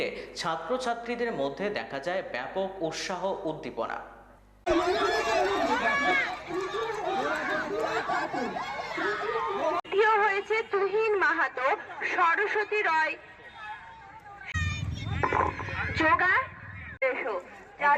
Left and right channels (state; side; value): identical; both; correlation 1.00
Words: ছাত্রছাত্রীদের মধ্যে দেখা যায় ব্যাপক উৎসাহ উদ্দীপনা। হয়েছে তুহিন মাহাতো, সরস্বতী রয়, যোগা